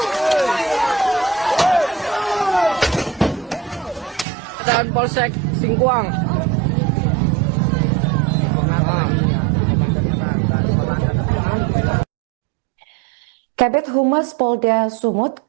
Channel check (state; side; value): drops out; left; at 4.2 s